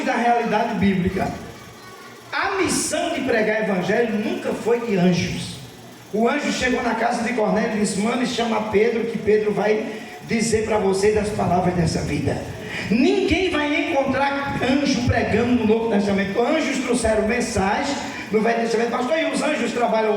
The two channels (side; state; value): both; identical; correlation 1.00